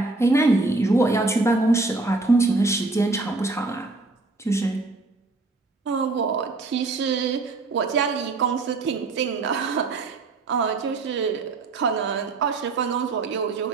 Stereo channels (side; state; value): left; quieter; 3.5 dB